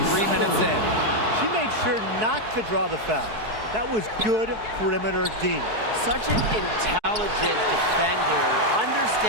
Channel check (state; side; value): late; left; 4.6 ms